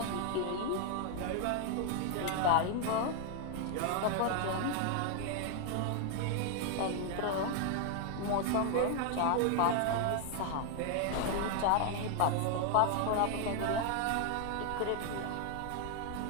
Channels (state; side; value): different; both; correlation 0.00